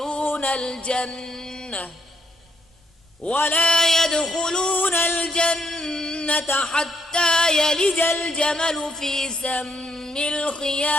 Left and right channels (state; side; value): normal; both; correlation 0.72